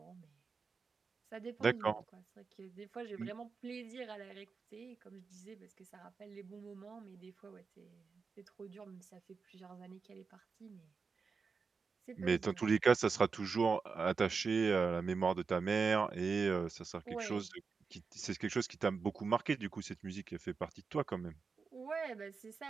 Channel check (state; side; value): quieter; left; 5.0 dB